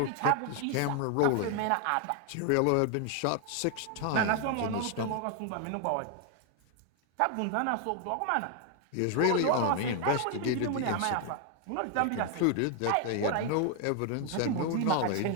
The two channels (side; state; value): both; different; correlation 0.00